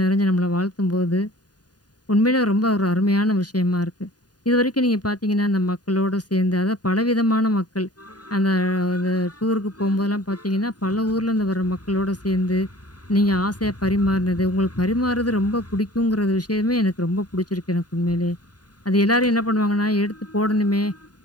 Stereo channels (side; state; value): right; late; 0.69 ms